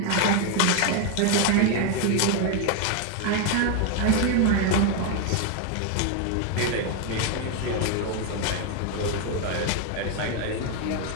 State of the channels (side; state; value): both; different; correlation 0.01